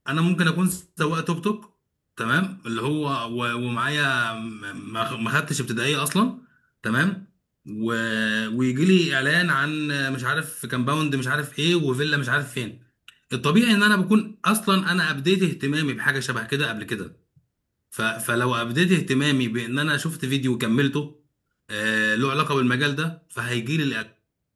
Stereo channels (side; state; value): both; identical; correlation 1.00